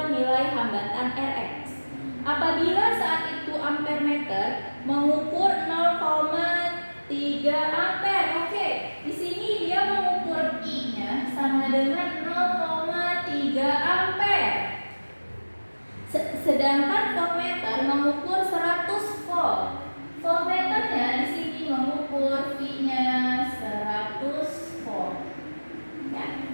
nilai hambatan Rx. Apabila saat itu ampermeter mengukur 0,3 ampere. Oke, di sini dia mengukur I-nya sama dengan 0,3 ampere. Sedangkan voltmeter mengukur 100 volt. Voltmeternya di sini mengukur V-nya 100 volt. Ya.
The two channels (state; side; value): inverted; both; correlation -1.00